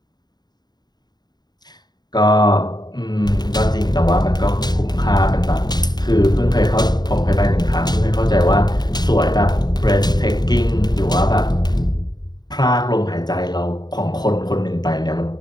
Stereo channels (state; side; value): late; right; 0.20 ms